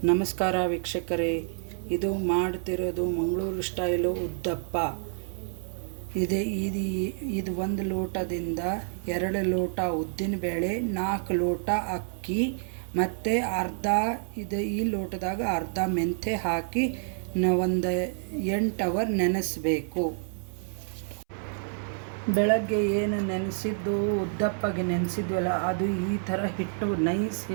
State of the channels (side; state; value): left; silent; 59 dB below the other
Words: ನಮಸ್ಕಾರ ವೀಕ್ಷಕರೇ, ಇದು ಮಾಡ್ತಿರೋದು ಮಂಗಳೂರು ಸ್ಟೈಲು ಉದ್ದಪ್ಪ. ಇದು 1 ಲೋಟದಿಂದ 2 ಲೋಟ ಉದ್ದಿನಬೇಳೆ, 4 ಲೋಟ ಅಕ್ಕಿ ಮತ್ತು ಈ ಲೋಟದಾಗ ಅರ್ಧ ಮೆಂತೆ ಹಾಕಿ ಒಂದು 8 ಅವರ್ ನೆನೆಸಬೇಕು. ಬೆಳಗ್ಗೆ ಏನು ನೆನೆಸಿದ್ದು ಉದ್ದಪ್ಪಗೆ ನೆನೆಸಿದ್ವಲ್ಲ, ಅದು ಈ ಥರ ಹಿಟ್ಟು ನೈಸ್